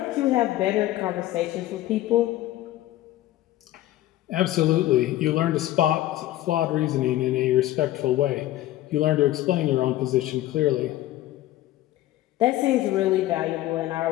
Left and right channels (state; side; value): quieter; right; 14.9 dB